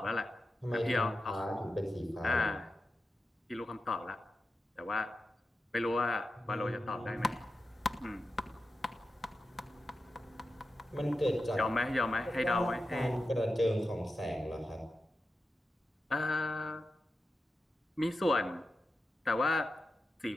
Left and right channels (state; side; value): normal; both; correlation 0.91